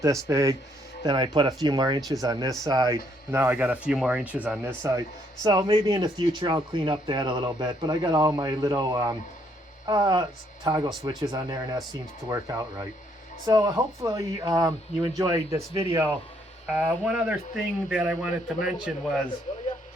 this big. Then I put a few more inches on this side. Now I got a few more inches on this side. So maybe in the future I'll clean up that a little bit, but I got all my little toggle switches on there, and that seems to work out right. So hopefully you enjoyed this video. One other thing that I wanted to mention was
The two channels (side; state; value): both; normal; correlation 0.70